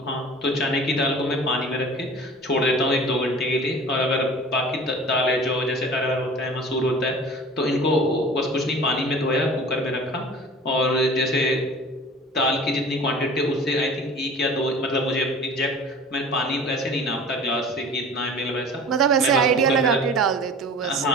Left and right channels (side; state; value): both; normal; correlation 0.42